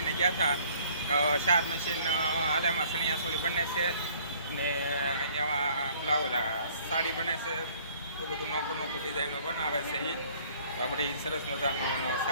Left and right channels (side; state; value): both; inverted; correlation -0.57